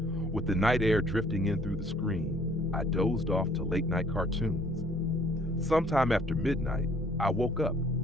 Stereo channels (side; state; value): both; normal; correlation 0.59